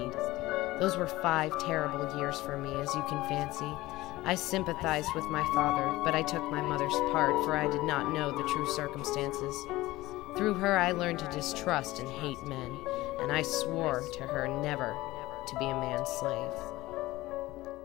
Those were 5 terrible years for me, as you can fancy. I sympathized with my father, but I took my mother's part, for I did not know the true circumstances. Through her I learned to distrust and hate men, and I swore to her never to be a man's slave.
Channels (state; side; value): quieter; right; 18.3 dB